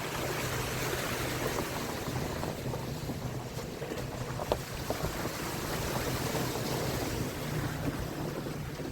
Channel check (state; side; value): identical; both; correlation 1.00